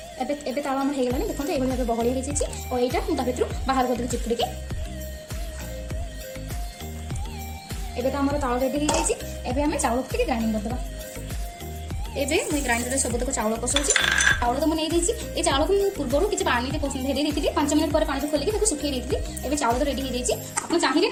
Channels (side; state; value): both; identical; correlation 1.00